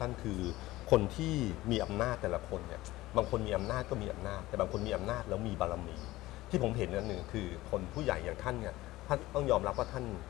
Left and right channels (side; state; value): right; quieter; 17.7 dB